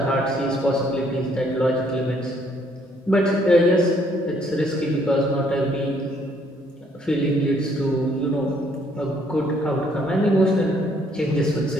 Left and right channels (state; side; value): normal; both; correlation 0.66